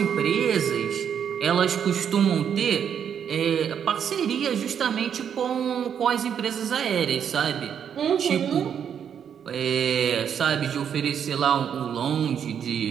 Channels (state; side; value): quieter; left; 8.2 dB